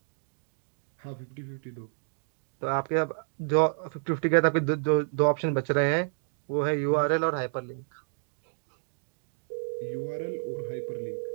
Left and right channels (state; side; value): silent; left; digital silence